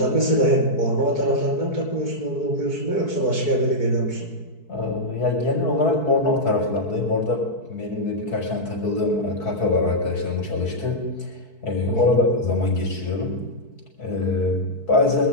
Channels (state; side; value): late; right; 4.6 ms